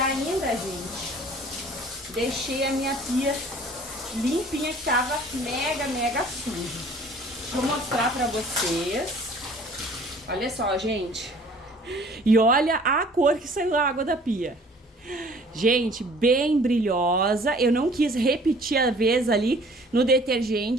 gente, deixei a minha pia limpinha, que tava mega suja. Deixa eu mostrar pra vocês. Olha só, gente. E olha a cor que saiu da água da pia. Gente, bem brilhosa. Eu não quis repetir a vez ali no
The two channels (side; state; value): both; normal; correlation 0.52